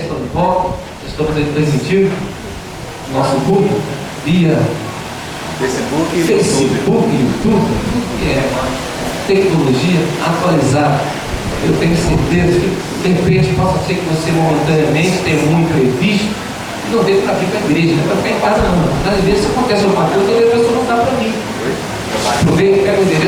estão de volta. Estamos aí transmitindo nosso culto via Facebook, YouTube, que é tecnologia atualizada. Eu tenho certeza que de repente possa ser que você momentaneamente tenha um imprevisto e não dê para vir para a igreja, não é para ficar em casa não. Às vezes acontece alguma coisa e a pessoa não dá para mim. Aproveita, pega o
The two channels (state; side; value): identical; both; correlation 1.00